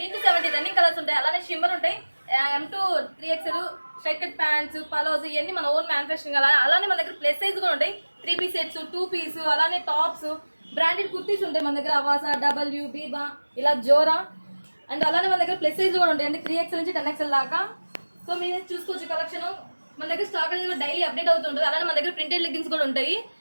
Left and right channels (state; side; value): inverted; both; correlation -1.00